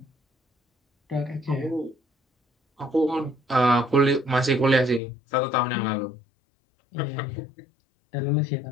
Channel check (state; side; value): drops out; right; at 5.0 s